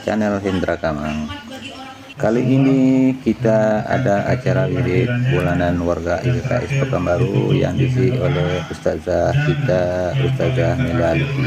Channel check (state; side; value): identical; both; correlation 1.00